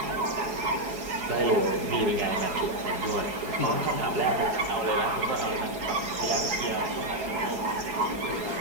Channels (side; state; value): left; late; 4.7 ms